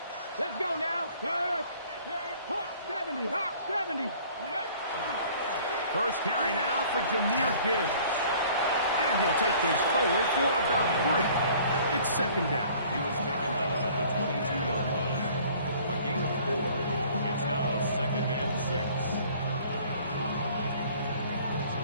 Let's go now. Hawk 70, Hawk 70. First carry now for Jahmyr Gibbs. And he'll take this forward for about 3. It's second down. He was taken down at the 22-yard line. A gain of 4. It's now second and 6.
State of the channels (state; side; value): inverted; both; correlation -0.53